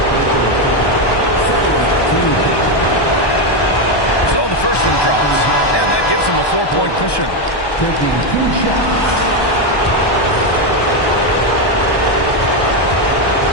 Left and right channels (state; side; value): late; right; 1.2 ms